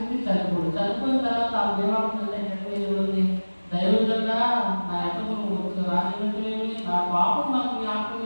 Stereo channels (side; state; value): both; inverted; correlation -1.00